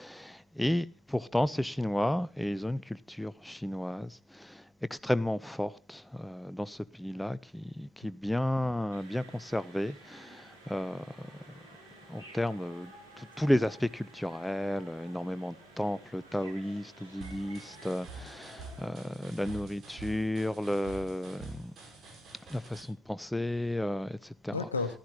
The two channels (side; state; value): both; normal; correlation 0.93